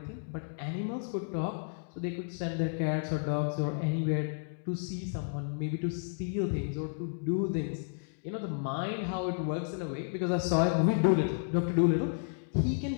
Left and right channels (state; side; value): silent; right; digital silence